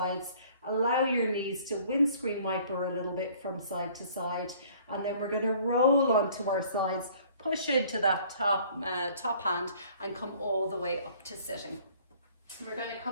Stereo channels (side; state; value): both; inverted; correlation -0.55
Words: Allow your knees to windscreen wiper a little bit from side to side. And then we're going to roll onto our sides, push into that top hand and come all the way up to sitting. We're going to